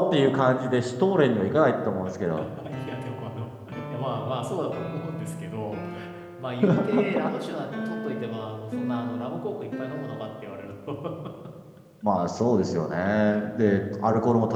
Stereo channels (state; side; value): identical; both; correlation 1.00